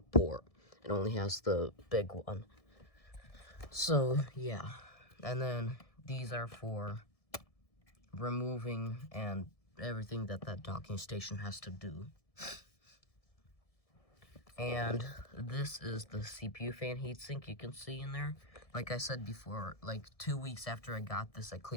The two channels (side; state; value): right; late; 1.7 ms